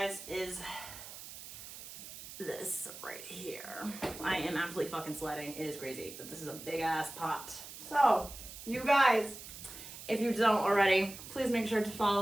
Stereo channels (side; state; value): right; noise; hiss, 13 dB below the sound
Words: is this right here. I am absolutely fucking sweating. It is crazy, but this is a big ass pot. So, you guys, if you don't already, please make sure to